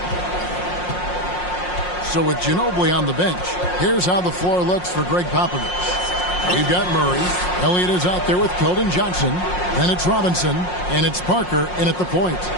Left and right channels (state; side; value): late; right; 5.6 ms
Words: So with Ginobili on the bench, here's how the floor looks for Greg Popovich. We've got Murray. Elliott is out there with Keldon Johnson. Then it's Robinson. And it's Parker in at the point.